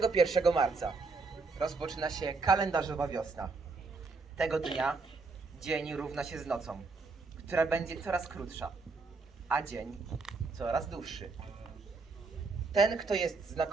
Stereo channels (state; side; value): quieter; left; 4.1 dB